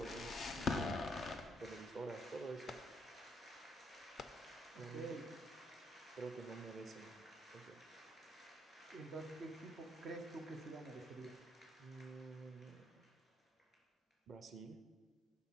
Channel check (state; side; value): normal; both; correlation 0.72